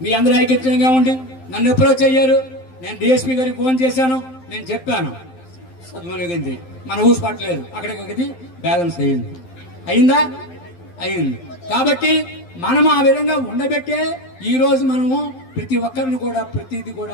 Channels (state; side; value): late; right; 12 ms